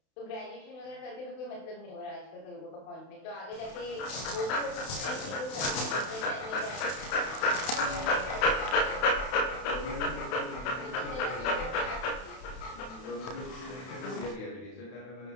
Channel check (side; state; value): right; late; 31 ms